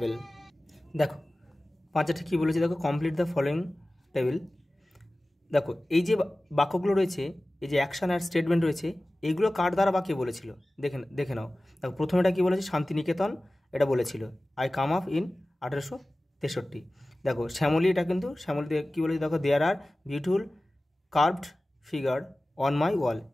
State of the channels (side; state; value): both; normal; correlation 0.97